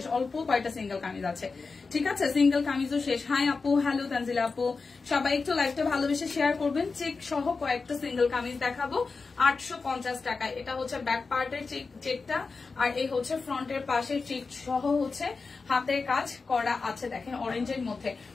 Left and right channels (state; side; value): quieter; right; 4.4 dB